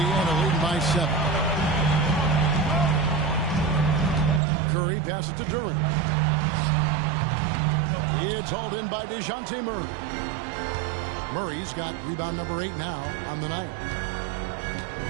leading by 7. Curry passes to Duren. It's hauled in by DeJounte Murray. Murray's got rebound number 8 now on the night.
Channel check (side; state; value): left; drops out; at 4.4 s